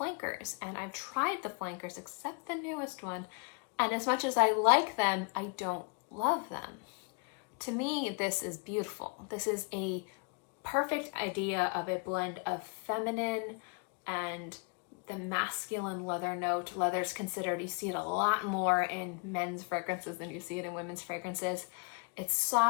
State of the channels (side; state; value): right; quieter; 36.4 dB